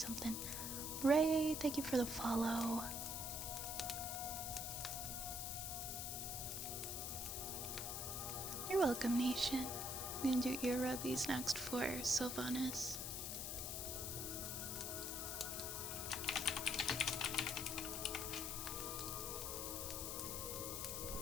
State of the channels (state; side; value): noise; left; hiss, 3 dB below the sound